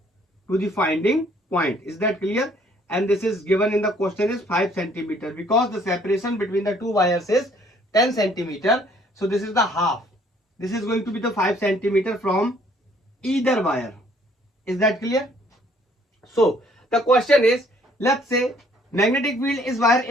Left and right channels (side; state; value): both; normal; correlation 0.61